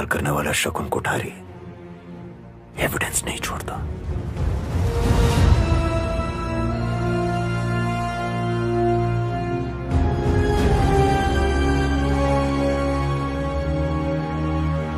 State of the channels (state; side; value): identical; both; correlation 1.00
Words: करने वाला शकुन कोठारी एविडेंस नहीं छोड़ता।